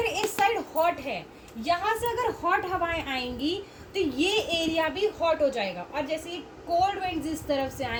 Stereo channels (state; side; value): identical; both; correlation 1.00